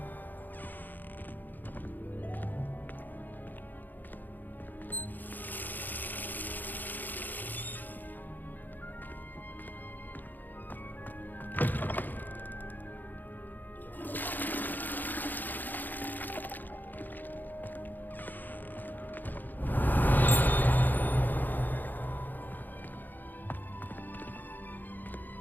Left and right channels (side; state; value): right; late; 0.087 ms